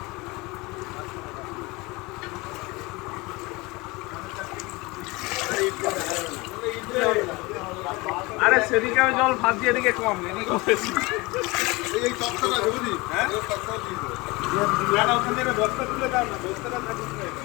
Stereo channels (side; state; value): right; quieter; 23.8 dB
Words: আরে সেদিকে আমি জল ভাবছি, এদিকে কম, এদিকে বেশি। এই তক্তাটা বুঝলি? হ্যাঁ এই তক্তাটা দিয়ে দেবো। না না, ওখান থেকে বস্তা তুলে দাও না, বস্তাটা থাকিস না